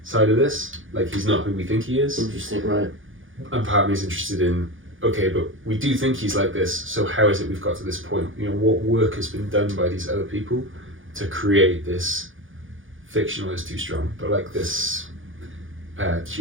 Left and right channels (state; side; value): late; left; 0.58 ms